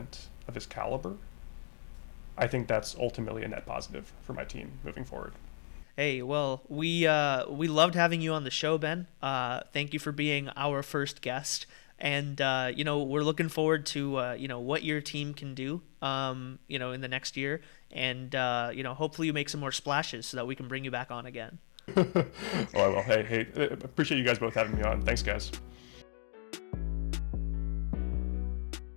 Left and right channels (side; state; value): right; silent; digital silence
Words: of his caliber, I think that's ultimately a net positive for my team moving forward. Hey, well, we loved having you on the show, Ben. Thank you for being our first guest. And, you know, we're looking forward to, you know, what your team can do, you know, in the next year. And, you know, hopefully you make some more splashes so that we can bring you back on again. Oh, I will. Hey, appreciate you guys both having me on. Thanks, guys.